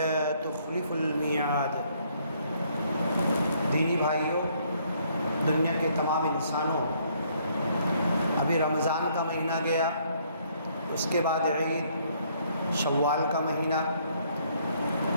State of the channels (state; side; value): inverted; both; correlation -0.66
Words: تخلف الميعاد۔ دینی بھائیوں، دنیا کے تمام انسانوں، ابھی رمضان کا مہینہ گیا، اس کے بعد عید، شوال کا مہینہ،